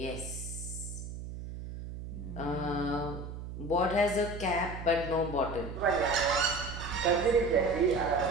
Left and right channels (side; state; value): right; noise; hum, 9 dB below the sound